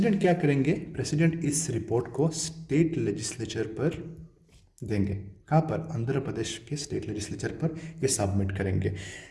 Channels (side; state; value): both; identical; correlation 1.00